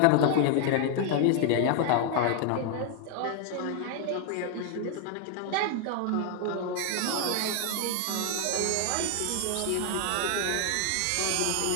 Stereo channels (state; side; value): different; both; correlation 0.00